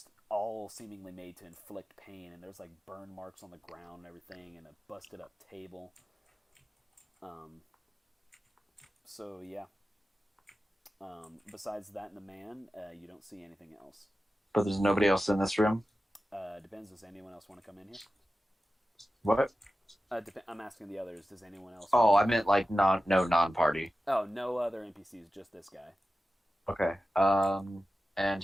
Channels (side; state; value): both; normal; correlation 0.93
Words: all seemingly made to inflict pain. And there's like burn marks on the ground and everything, and a busted up table. So yeah. Besides that and the man, you don't see anything else. But there's nobody else in this room? Depends. Does anyone else want to come in here? What? I'm asking the others. Does anyone else? Oh, I meant like no non-party. Oh, no other NPCs, just this guy. Okay. And